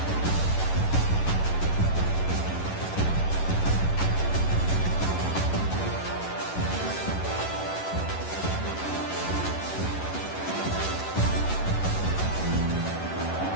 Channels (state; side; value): late; right; 11 ms